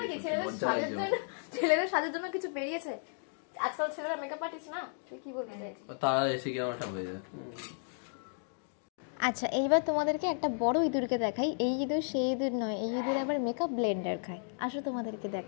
কি ছেলেদের সাজের জন্য কিছু বেরিয়েছে আজকাল, ছেলেরা মেকআপ আর্টিস্ট না, তুই কি বলতে চাইছিস? তারা এসে কি আমারটা হয়ে যায়। আচ্ছা, এইবার তোমাদেরকে একটা বড় ইঁদুরকে দেখাই। এই ইঁদুর সেই ইঁদুর নয়, এই ইঁদুর আবার মেকআপ ব্লেন্ডার খায়। আসো তোমাদেরকে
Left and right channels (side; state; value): right; silent; digital silence